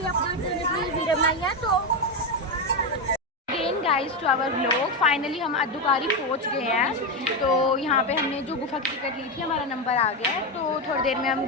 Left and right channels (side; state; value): both; normal; correlation 0.10